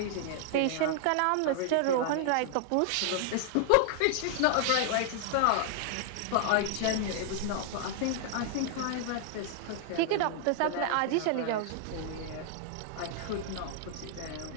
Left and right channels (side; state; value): both; different; correlation -0.01